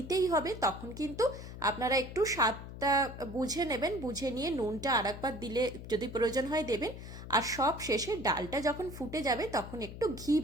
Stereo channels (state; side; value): noise; left; hum, 11 dB below the sound